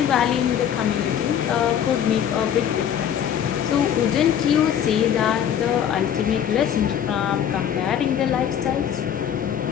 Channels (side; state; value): right; quieter; 9.2 dB